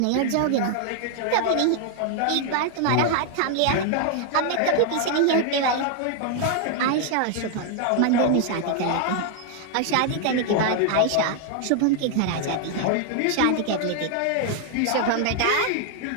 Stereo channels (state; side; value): different; both; correlation 0.00